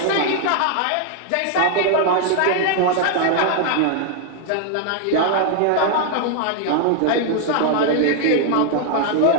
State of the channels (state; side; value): different; both; correlation 0.00